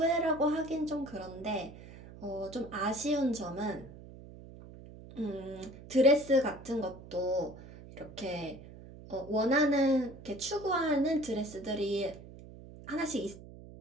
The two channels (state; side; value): noise; right; hum, 17 dB below the sound